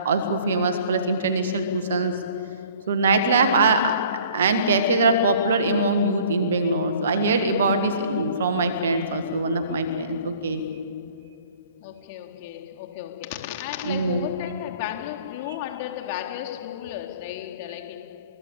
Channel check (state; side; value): inverted; both; correlation -0.51